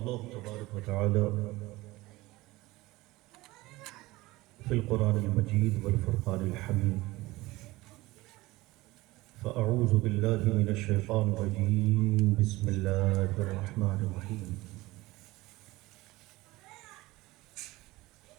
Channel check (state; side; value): quieter; left; 19.8 dB